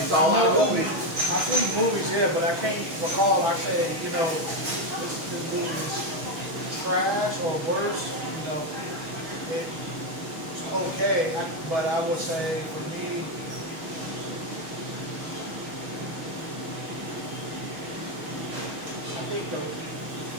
I all know out movies. movies. I've seen movies, yeah, but I can't recall. I said, you know, this movie is trash or worse. You know, it's okay, but I would say for me, I think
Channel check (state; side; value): late; left; 6.2 ms